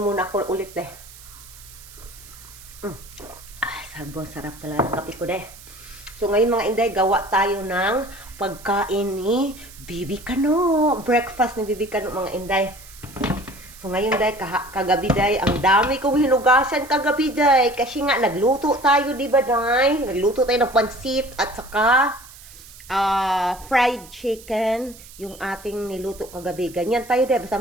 muna ako ulit deh. Sarap talaga ng kape ko deh. So ngayon mga inday, gawa tayo ng pagkain ni Bibi Kano. Breakfast ni Bibi Kano mga inday. So ngayon day, kagabi day, ang dami kong hinugasan kagabi day. Kasi nga nagluto tayo, di ba day? Nagluto tayo ng pansit at saka fried chicken, yung ating niluto kagabi. Ganyan tayo day, basta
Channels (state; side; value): noise; right; hiss, 19 dB below the sound